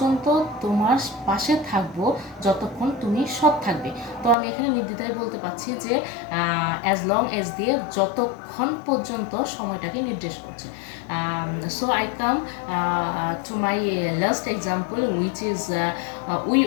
তোমার পাশে থাকবো যতক্ষণ তুমি সৎ থাকবে। তো আমি এখানে নির্দ্বিধায় বলতে পারছি যে অ্যাজ লং এজ দিয়ে যতক্ষণ পর্যন্ত সময়টাকে নির্দেশ করছে। So I come to my last example, which is we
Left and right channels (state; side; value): drops out; right; at 4.4 s